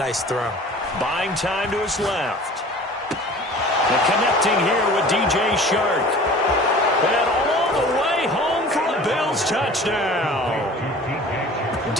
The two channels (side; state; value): both; normal; correlation 0.44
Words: throw. Buying time to his left. And connecting here with DJ Chark. And all the way home for a Bills touchdown.